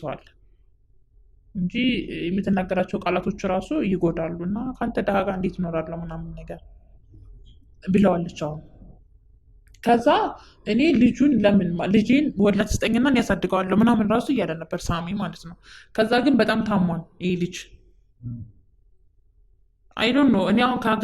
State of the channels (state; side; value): identical; both; correlation 1.00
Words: አለ እንጂ የምትናገራቸው ቃላቶች ራሱ ይጎዳሉ እና ከአንተ ድሃ ጋር እንዴት እኖራለሁ ምናምን ነገር ብለዋለች። አሁን ከዛ እኔ ልጁን ለምን ልጄን ወላድ ስጠኝና እኔ ያሳድገዋለሁ ምናምን ራሱ እያለ ነበር ሳሚ ማለት ነው። ከዛ ግን በጣም ታሟን ይህ ልጅ አይዶን ነው። እኔ አሁን